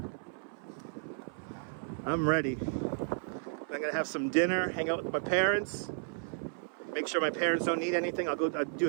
I'm ready. I'm gonna have some dinner, hang out with my parents, make sure my parents don't need anything. I'll do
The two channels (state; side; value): silent; left; 56 dB below the other